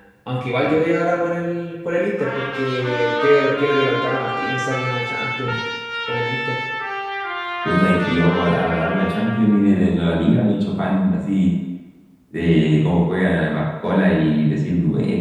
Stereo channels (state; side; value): identical; both; correlation 1.00